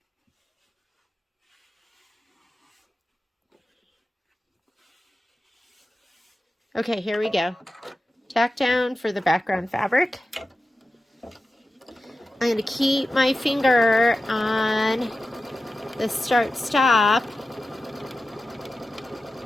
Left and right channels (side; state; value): both; normal; correlation 0.93